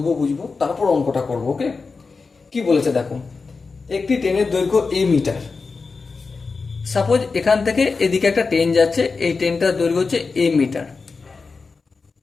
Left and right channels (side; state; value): right; quieter; 4.5 dB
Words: বুঝবো, তারপর অঙ্কটা করবো। ওকে, কি বলেছে দেখো। একটি ট্রেনের দৈর্ঘ্য এ মিটার। সাপোজ এখান থেকে এদিকে একটা ট্রেন যাচ্ছে, এই ট্রেনটার দৈর্ঘ্য হচ্ছে এ মিটার